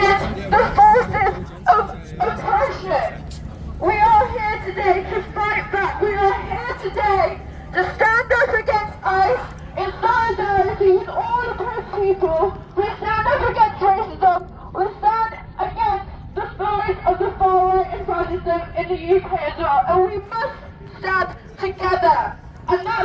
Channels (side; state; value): both; identical; correlation 1.00